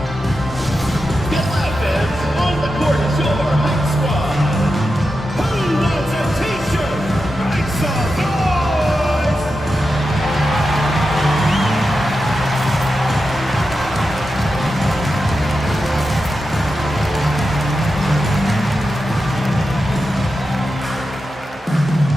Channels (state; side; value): normal; both; correlation 0.90